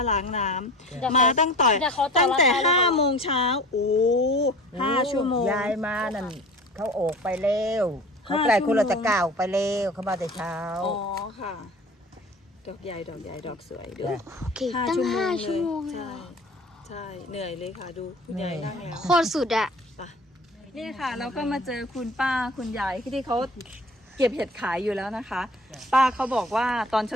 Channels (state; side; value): normal; both; correlation 0.42